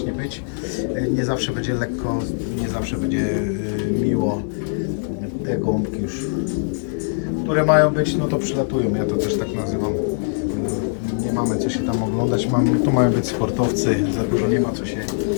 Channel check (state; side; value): silent; right; digital silence